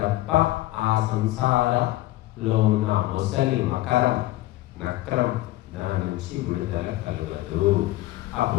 ఆ సంసారంలో ఉన్న ముసలి మకరం నక్రం దాని నుంచి విడుదల కలగదు.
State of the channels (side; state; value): right; quieter; 17.1 dB